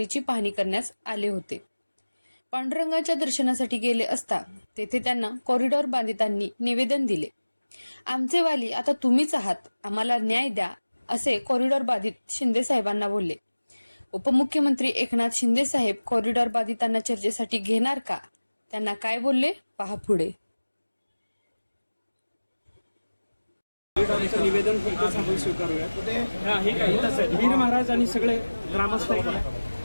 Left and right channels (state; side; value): inverted; both; correlation -1.00